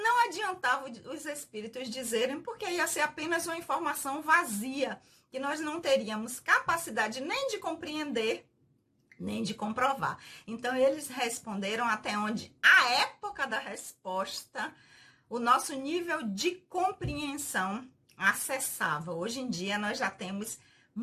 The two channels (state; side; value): identical; both; correlation 1.00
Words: adiantava os espíritos dizerem, porque ia ser apenas uma informação vazia, que nós não teríamos capacidade nem de compreender, nem de comprovar. Então, eles responderam até onde a época da resposta, o nosso nível de compreensão acessava. Hoje em dia, nós já temos